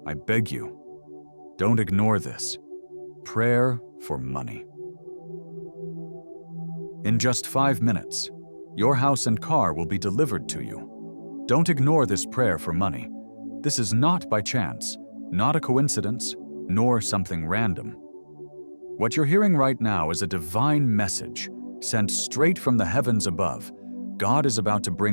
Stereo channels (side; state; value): both; inverted; correlation -1.00